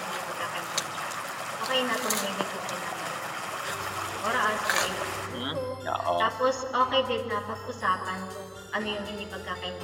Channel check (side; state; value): both; identical; correlation 1.00